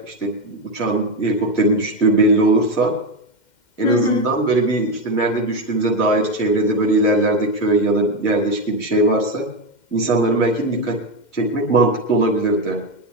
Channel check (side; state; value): right; late; 2.1 ms